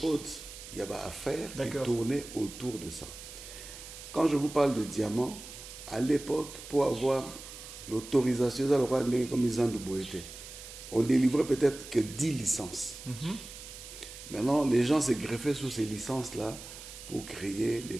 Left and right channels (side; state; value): right; noise; hiss, 13 dB below the sound